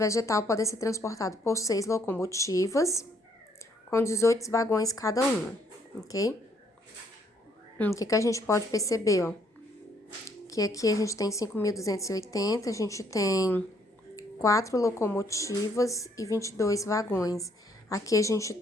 podem ser transportados por 6 locomotivas, com 18 vagões cada uma, ok? O que a gente pode perceber, ó? Que aqui a gente tem 5.280, a gente tem 4 locomotivas e 22 vagões. Aqui a gente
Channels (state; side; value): normal; both; correlation 0.68